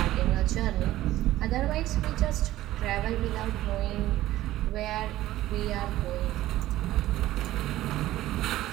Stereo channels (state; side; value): quieter; left; 15.2 dB